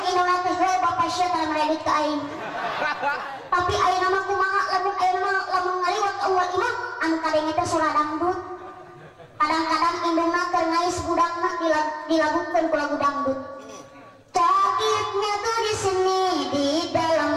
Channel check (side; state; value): both; identical; correlation 1.00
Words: indungna teh bapak sia tara meredit ka aing. Tapi ayeuna mah kumaha lamun ngaliwat ka uwal imah anu kadenge teh surah dangdut. Kadang-kadang indungna keur ngais budakna dilagukeun ku lagu dangdut. Sakitnya tuh di sini di dalam